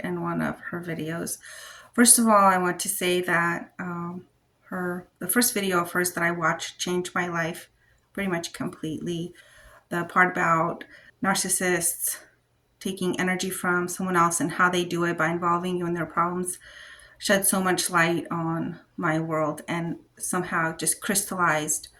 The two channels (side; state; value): both; identical; correlation 1.00